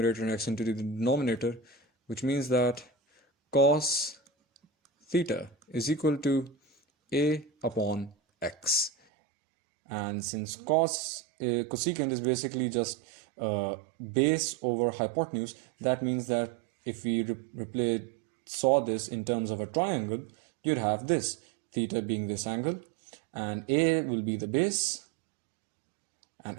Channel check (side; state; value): left; drops out; at 8.9 s